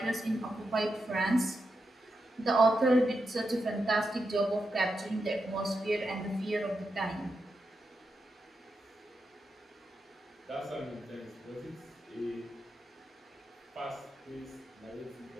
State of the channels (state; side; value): normal; both; correlation 0.86